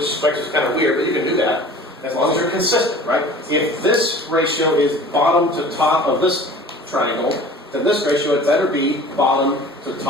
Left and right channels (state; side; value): normal; both; correlation 0.44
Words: strikes us kind of weird, but you can do that as long as you're consistent, right? If this ratio is bottom to top of this triangle, then this ratio had better be bottom to